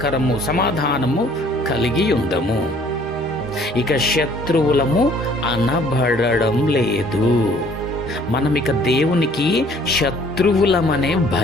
కలిగి ఉందము. ఇక శత్రువులము అనబడడం లేదు. మనం ఇక దేవునికి శత్రువులమనే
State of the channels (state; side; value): normal; both; correlation 0.57